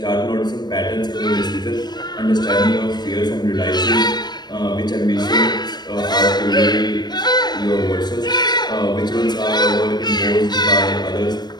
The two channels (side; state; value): right; late; 0.20 ms